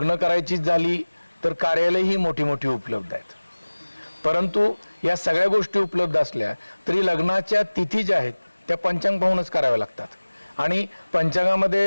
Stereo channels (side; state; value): both; inverted; correlation -1.00